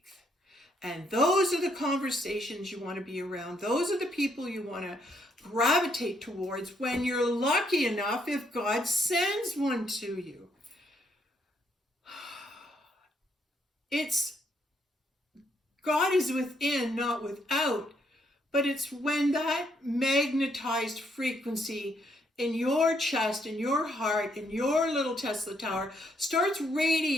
And those are the conversations you want to be around. Those are the people you want to gravitate towards when you're lucky enough, if God sends one to you. God is within, not without, but it's when that magnetized frequency in your chest, in your heart, in your little Tesla tower starts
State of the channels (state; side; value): normal; both; correlation 0.73